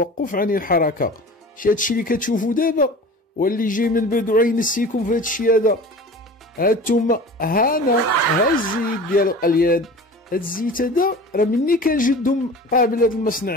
عن الحركة. هادشي اللي كتشوفوا دابا واللي جاي من بعد غينسيكم في هادشي هذا. هانتوما هانا ها الزيت ديال القليان. هاد الزيت هذا راه مني كان جدهم قابل هذا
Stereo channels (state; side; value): normal; both; correlation 0.38